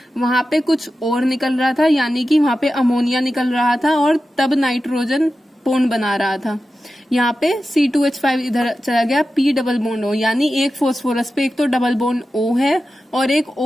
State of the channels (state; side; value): normal; both; correlation 0.93